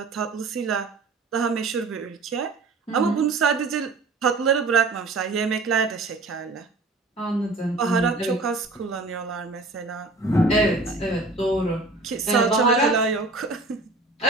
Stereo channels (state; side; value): quieter; left; 3.3 dB